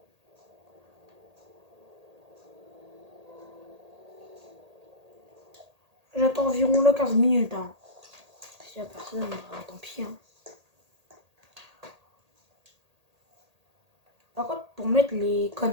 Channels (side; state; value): left; late; 1.8 ms